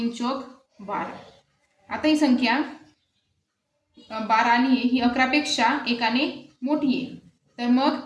चौक 12। आता ही संख्या 12 आली आहे, ही 11पेक्षा 1 मोठी आहे। तर मग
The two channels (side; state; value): both; identical; correlation 1.00